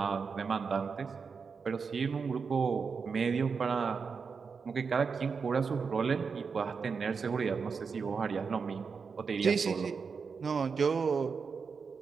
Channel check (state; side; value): quieter; left; 5.5 dB